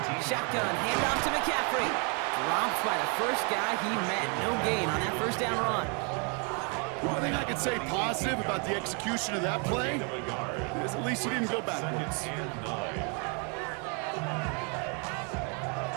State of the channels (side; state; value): left; quieter; 36.2 dB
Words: Shotgun, handoff to McCaffrey. Dropped by the first guy he met. No gain on that first down run. One thing I could say positive about the execution of that play is at least he didn't go backwards. Second and 9.